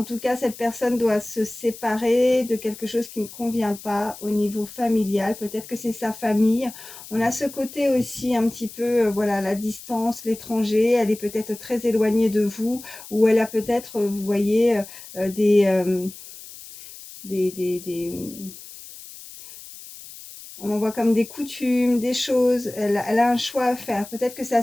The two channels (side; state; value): left; noise; hiss, 16 dB below the sound